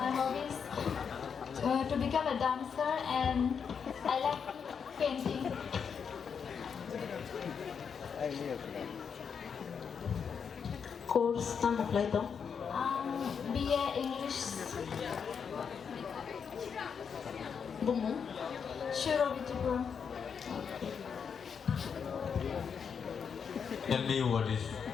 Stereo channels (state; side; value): quieter; right; 6.7 dB